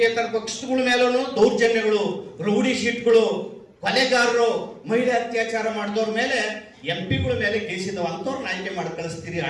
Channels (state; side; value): identical; both; correlation 1.00